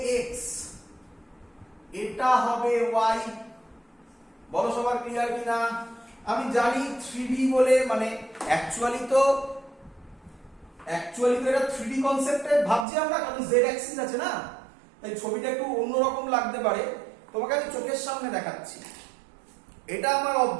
x, এটা হবে y? বলো সবার ক্লিয়ার কিনা? আমি জানি 3D বলে, মানে অ্যাকচুয়ালি তো এটা 3D কনসেপ্টে ভাবছি আমরা, কারণ z অ্যাক্সিস আছে না, তাই ছবিটা একটু অন্যরকম লাগতে পারে। তোমাকে আমি চোখের সামনে দেখাচ্ছি, এটা আমার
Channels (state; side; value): drops out; left; at 12.9 s